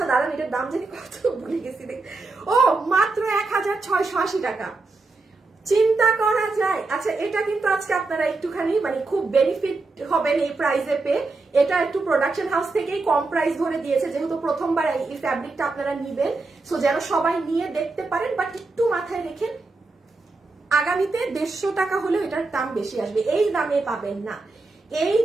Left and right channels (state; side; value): quieter; left; 3.6 dB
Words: দাঁড়ান, এটার দাম জানি কত ভুলে গেছি। ও মাত্র 1680 টাকা। চিন্তা করা যায়। আচ্ছা, এটা কিন্তু আজকে আপনারা একটুখানি মানে খুব বেনিফিট হবেন এই প্রাইসে পেয়ে। এটা একটু প্রোডাকশন হাউস থেকেই কম প্রাইস ধরে দিয়েছে, যেহেতু প্রথমবার এই ফ্যাব্রিকটা আপনারা নিবেন। সো যেন সবাই নিয়ে দেখতে পারেন, বাট একটু মাথায় রেখেন আগামীতে 150 টাকা হলেও এটার দাম বেশি আসবে। এই দামে পাবেন না, এই